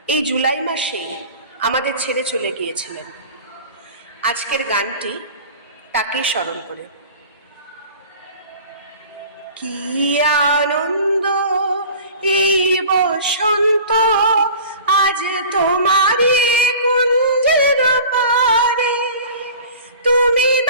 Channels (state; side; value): inverted; both; correlation -0.42